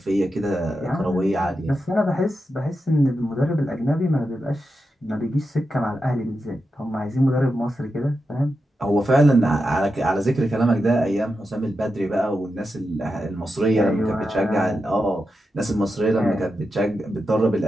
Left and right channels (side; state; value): both; normal; correlation 0.88